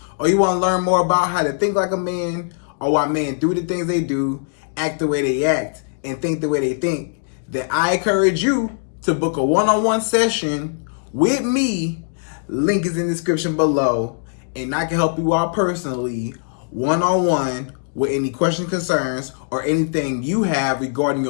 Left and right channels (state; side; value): silent; right; digital silence